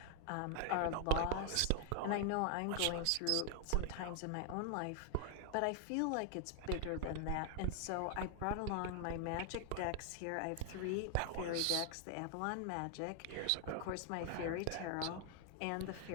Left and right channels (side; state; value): both; different; correlation 0.00